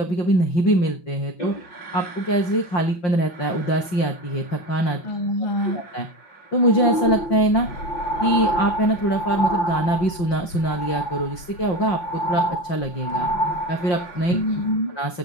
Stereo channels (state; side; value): late; right; 5.8 ms